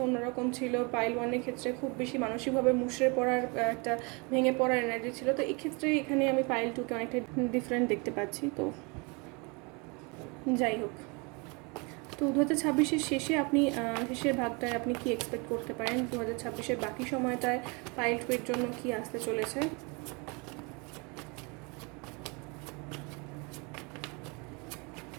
অন্যরকম ছিল। পাইল 1-এর ক্ষেত্রে খুব বেশি মানসিকভাবে মুষড়ে পড়ার একটা ভেঙে পড়ার এনার্জি ছিল, তো এক্ষেত্রে এখানে আমি পাইল 2-কে অনেকটা ডিফারেন্ট দেখতে পাচ্ছি। তো যাই হোক, তো 2026-এর শেষে আপনি শেষের ভাগটায় আপনি কি এক্সপেক্ট করতে পারেন, 2026-এর বাকি সময়টায় পাইল 2-এর জন্য কি আসতে চলেছে।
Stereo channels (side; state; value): left; quieter; 30.3 dB